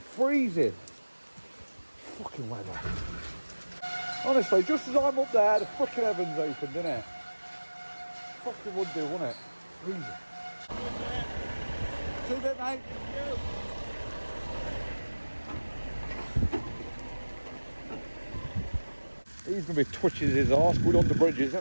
Fucking weather. Honestly, just as I'm up there, the fucking heavens opened, innit? Fucking would do, wouldn't it? Freezing. See you, mate. He's going to be twitching his arse going under bridges,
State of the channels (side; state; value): both; inverted; correlation -1.00